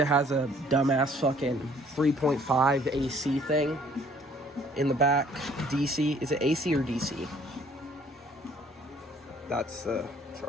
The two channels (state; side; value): normal; both; correlation 0.59